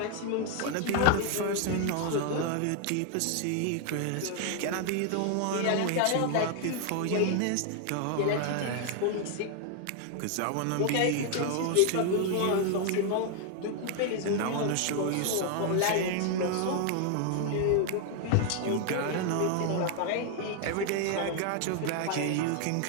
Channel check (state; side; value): different; both; correlation 0.00